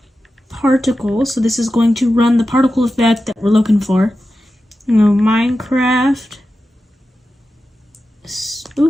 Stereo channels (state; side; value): normal; both; correlation 0.92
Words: particle, so this is going to run the particle effect that we're looking for. Minecraft